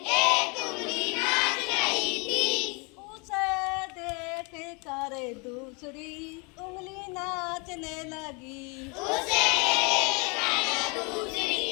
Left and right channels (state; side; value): quieter; right; 30.6 dB